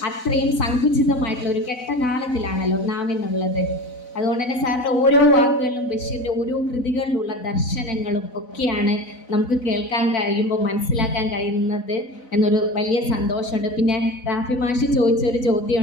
അത്രയും സങ്കുചിതമായിട്ടുള്ള ഒരു കെട്ട കാലത്തിലാണല്ലോ നാം എന്നുള്ളത്. അതുകൊണ്ട് തന്നെ സാറിൻ്റെ ഓരോ വാക്കുകളിലും ബഷീറിൻ്റെ ഓരോ കൃതികളിലുള്ള ദർശനങ്ങളും ഒക്കെയാണ് നമുക്ക് കേൾക്കാൻ കഴിയുമ്പോൾ മനസ്സിലാക്കാൻ കഴിയുന്നത് എന്നൊരു വലിയ സന്തോഷമുണ്ട്. പിന്നെ റാഫി മാഷി ചോദിച്ചൊരു ചോദ്യം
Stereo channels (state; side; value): late; right; 4.0 ms